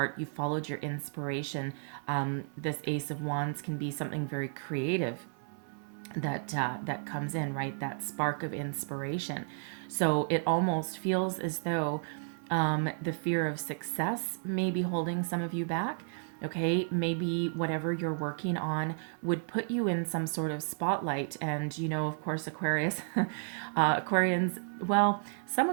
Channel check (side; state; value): left; silent; 56 dB below the other